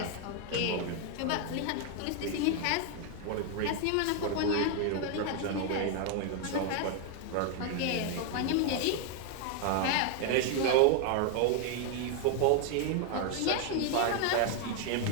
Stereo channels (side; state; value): both; different; correlation 0.01